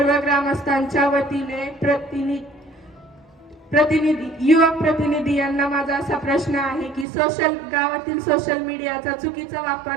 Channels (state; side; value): drops out; left; at 7.1 s